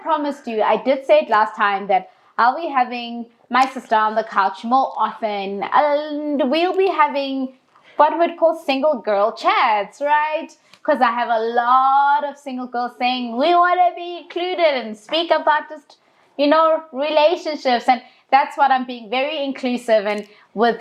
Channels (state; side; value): identical; both; correlation 1.00